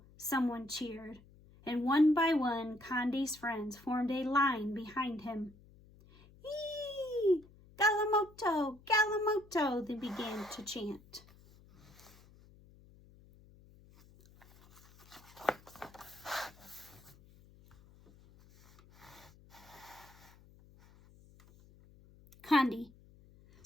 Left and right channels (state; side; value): noise; left; hum, 25 dB below the sound